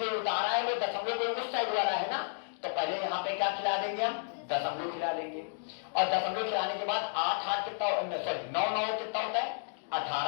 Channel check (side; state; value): right; silent; digital silence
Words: उतारा है वो दशमलव के उस साइड वाला है ना। तो पहले यहाँ पे क्या खिला देंगे? हम दशमलव खिला देंगे। और दशमलव खिलाने के बाद 8 8 कितना, सॉरी 9 9 कितना होता है?